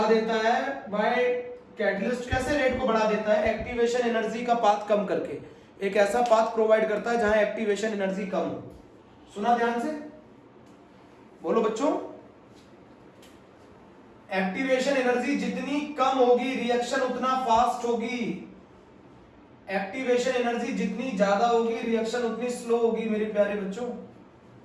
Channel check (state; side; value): identical; both; correlation 1.00